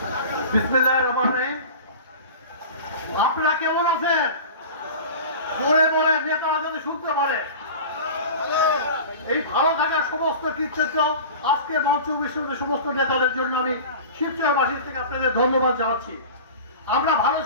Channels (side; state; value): both; inverted; correlation -0.35